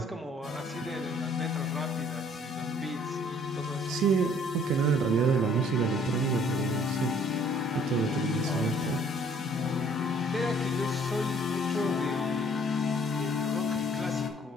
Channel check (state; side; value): normal; both; correlation 0.58